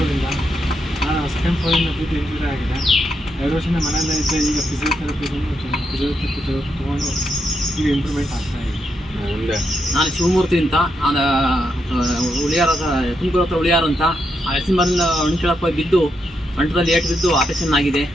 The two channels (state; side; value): normal; both; correlation 0.81